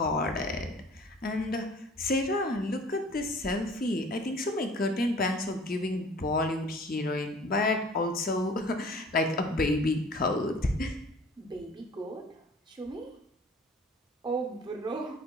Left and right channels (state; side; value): normal; both; correlation 0.48